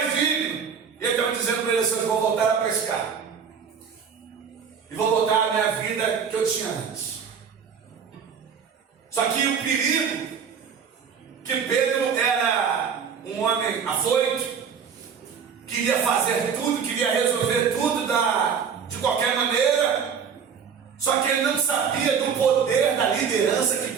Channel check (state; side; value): quieter; left; 6.8 dB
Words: digno. E ele estava dizendo para ele assim: eu vou voltar a pescar. E vou voltar à minha vida que eu tinha antes. Só que o perigo, que Pedro era um homem afoito, queria fazer tudo, queria resolver tudo de qualquer maneira. Só que ele não sabia do poder da liderança que